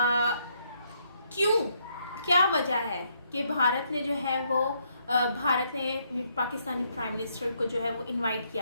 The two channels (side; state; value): both; inverted; correlation -0.73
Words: क्या वजह है कि भारत ने जो है वो भारत ने पाकिस्तानी प्राइम मिनिस्टर को जो है वो इनवाइट